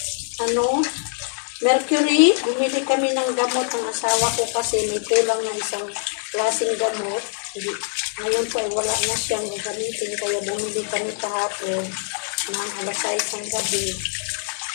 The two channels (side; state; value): right; silent; digital silence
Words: Mercury. Bumili kami ng gamot ng asawa ko kasi may kulang na isang klaseng gamot. Ngayon po ay wala na siyang gagamitin kaya bumili kami kahapon ng alas 6 ng gabi.